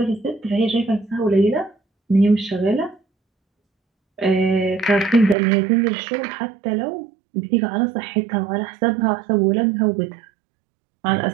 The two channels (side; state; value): left; drops out; at 5.4 s